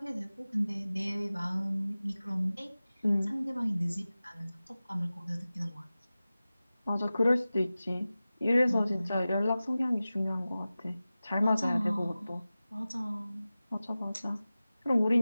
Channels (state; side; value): inverted; both; correlation -0.96